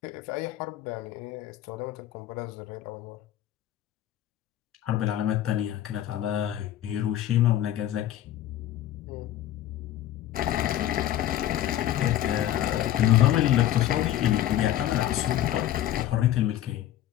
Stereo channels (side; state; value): right; quieter; 12.5 dB